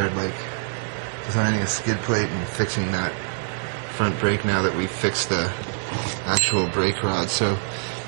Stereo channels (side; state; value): left; silent; 62 dB below the other